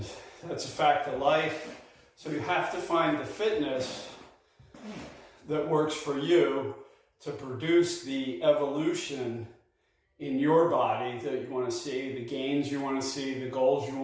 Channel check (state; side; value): identical; both; correlation 1.00